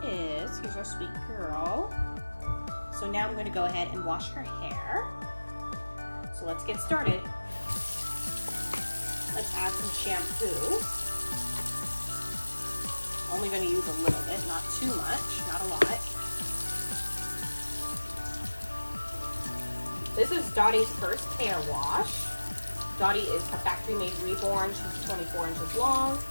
is. Here's our sweet girl. So now I'm going to go ahead and wash her hair. So let's get started. Let's add some shampoo. Only going to use a little bit, not too much, not a lot. This is Dottie's first hair wash. Dottie is a factory-made reborn. She's 24 inches long.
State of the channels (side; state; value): both; inverted; correlation -1.00